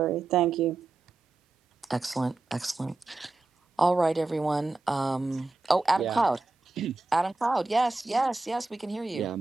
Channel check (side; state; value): left; quieter; 3.2 dB